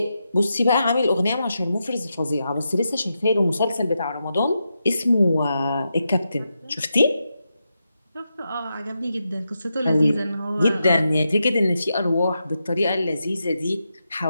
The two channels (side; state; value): both; inverted; correlation -0.87